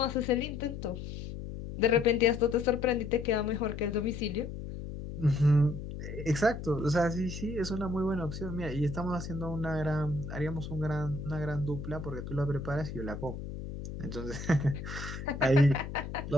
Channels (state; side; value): noise; left; hum, 8 dB below the sound